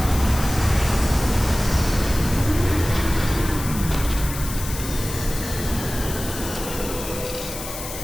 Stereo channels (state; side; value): noise; left; hiss, 9 dB below the sound